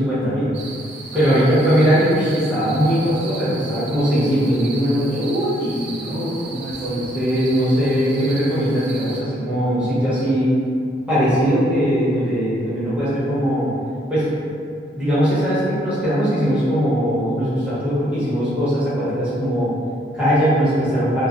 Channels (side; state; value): both; normal; correlation 0.69